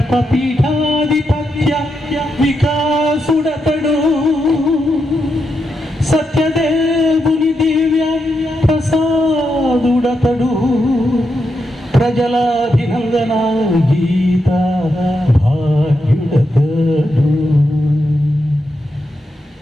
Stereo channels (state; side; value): normal; both; correlation 0.84